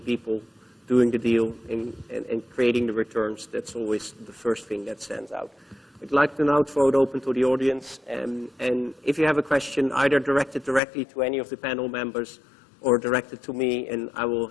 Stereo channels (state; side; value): drops out; right; at 10.8 s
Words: people doing the deal and creating the returns. That's always the first thing that stands out. I'd like to now throw it open to the audience, and if you have a question, either directed directly to any of the panel members or directed to me, and I will